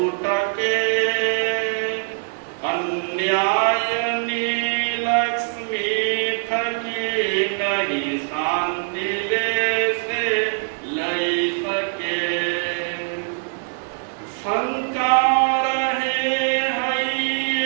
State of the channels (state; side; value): silent; left; 61 dB below the other